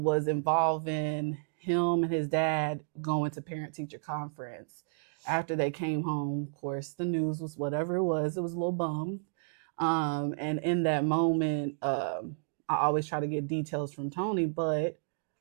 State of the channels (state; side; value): silent; left; digital silence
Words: involving him and his dad going to parent-teacher conference. After they came home, of course, the news was whatever it was a little bummed. And in that moment, I always try to get details from Tony, but